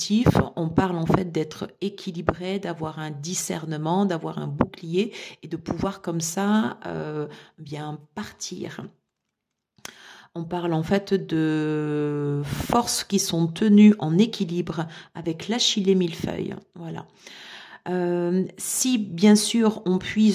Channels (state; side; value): identical; both; correlation 1.00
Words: on parle en fait d'être équilibré, d'avoir un discernement, d'avoir un bouclier et de pouvoir comme ça bien partir. On parle en fait de forces qui sont tenues en équilibre avec l'Achillée millefeuille. Voilà. Si bien sûr on